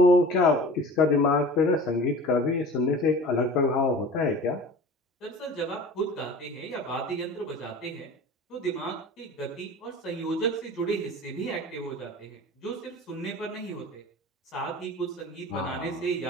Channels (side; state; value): both; normal; correlation 0.40